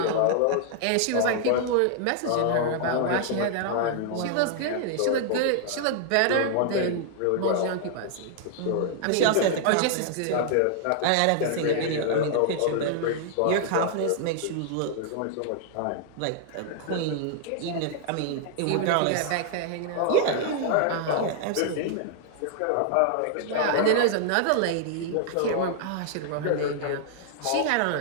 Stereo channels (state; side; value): different; both; correlation 0.00